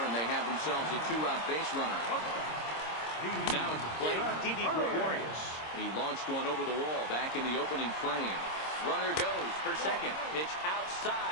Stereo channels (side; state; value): right; late; 26 ms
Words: and they have themselves a 2-out base runner. Now at the plate, Didi Gregorius. He launched one over the wall back in the opening frame. Runner goes for second. Pitch